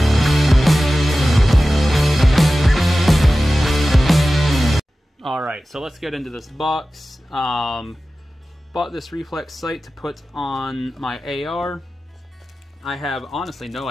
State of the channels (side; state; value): both; normal; correlation 0.95